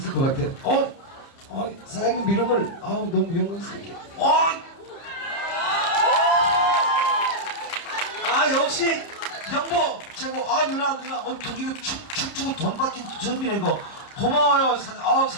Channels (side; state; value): right; late; 30 ms